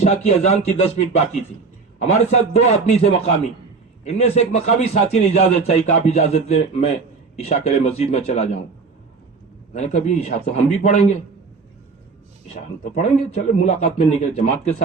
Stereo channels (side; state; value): left; quieter; 4.6 dB